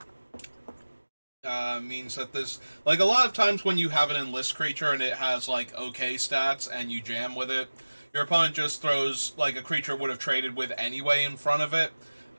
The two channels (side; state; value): both; inverted; correlation -1.00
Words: means that this, like, a lot of times when you have an enlist creature and it has like okay stats and you jam with it, your opponent just throws like a creature would have traded with anyway in front of it.